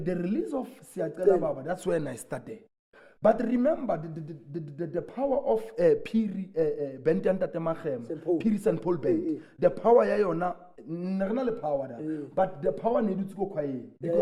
release of Siatela Baba, that's when I started. But remember the power of Piri Piri St. Paul Band. The power yayona not the power but the power needed to go quiet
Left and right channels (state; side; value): identical; both; correlation 1.00